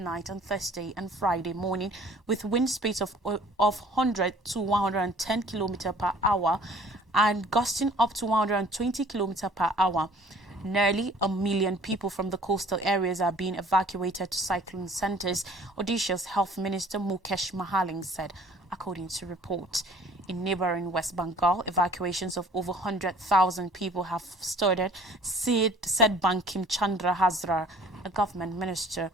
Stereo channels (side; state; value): both; normal; correlation 0.52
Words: on Thursday and Friday morning, with wind speeds of 100 to 110 km per hour and gusting up to 120 km per hour. Nearly a million people from the coastal areas are being evacuated to cyclone centers, Odisha's Health Minister Mukesh Mahaling said, according to reports. In neighboring West Bengal, evacuations of over 100,000 people have started, said Bankim Chandra Hazra, a government minister.